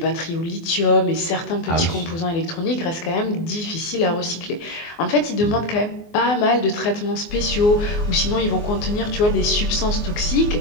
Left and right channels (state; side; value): late; right; 24 ms